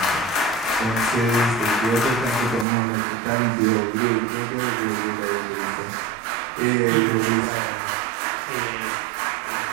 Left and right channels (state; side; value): drops out; left; at 2.7 s